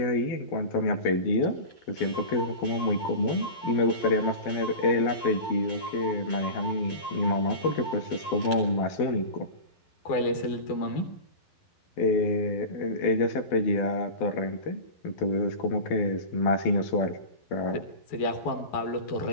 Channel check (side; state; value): right; late; 12 ms